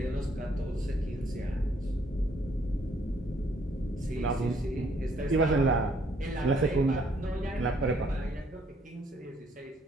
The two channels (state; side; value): normal; both; correlation 0.66